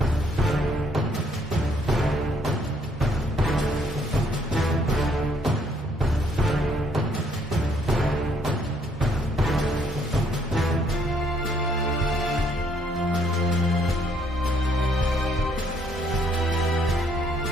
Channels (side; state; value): both; normal; correlation 0.68